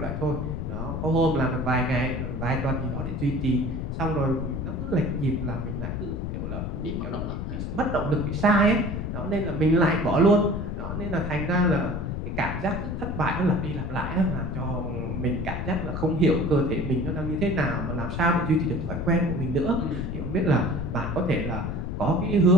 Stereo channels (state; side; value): noise; left; rumble, 4 dB below the sound